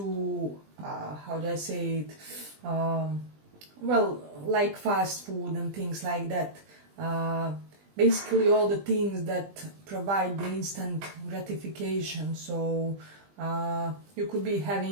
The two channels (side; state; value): left; late; 20 ms